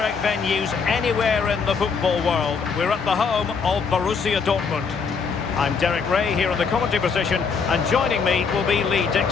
venues anywhere in the football world. We're at the home of Borussia Dortmund. I'm Derek Ray here in the commentary position, and joining me will be Lee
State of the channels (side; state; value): right; quieter; 5.5 dB